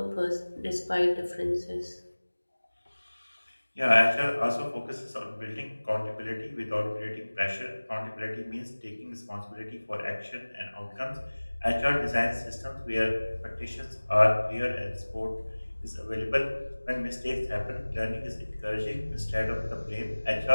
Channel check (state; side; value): inverted; both; correlation -1.00